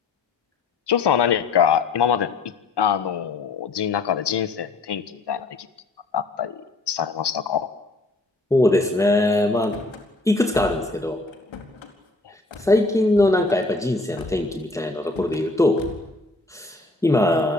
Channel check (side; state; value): right; quieter; 3.2 dB